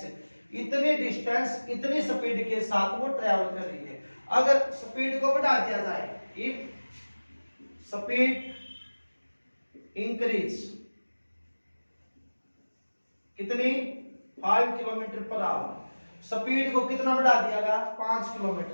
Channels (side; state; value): both; inverted; correlation -1.00